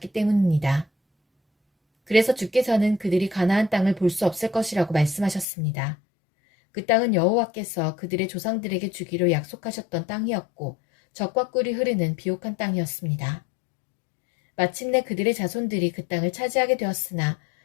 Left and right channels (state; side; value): drops out; right; at 5.5 s